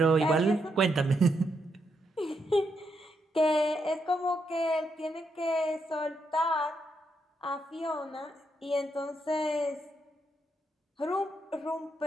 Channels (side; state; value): both; normal; correlation 0.80